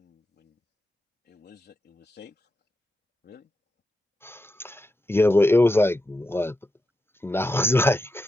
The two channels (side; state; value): both; normal; correlation 0.87